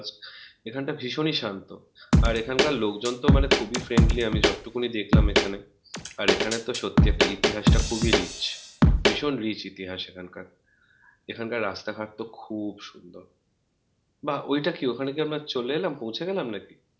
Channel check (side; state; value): both; identical; correlation 1.00